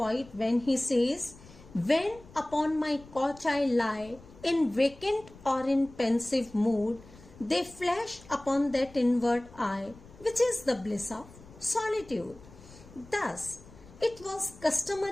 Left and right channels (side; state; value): left; noise; rumble, 21 dB below the sound